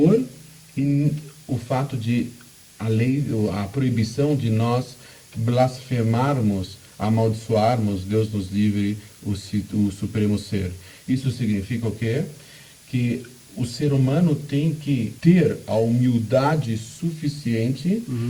e o fato de a proibição de nós blasfemarmos, amaldiçoarmos, Deus nos livre, o Supremo Ser. Isso significa o quê? Que o ser humano tem que ter a humildade suficiente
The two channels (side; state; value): both; identical; correlation 1.00